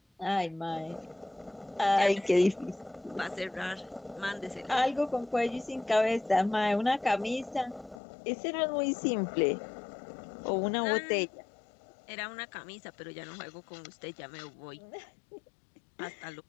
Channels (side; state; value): right; drops out; at 8.0 s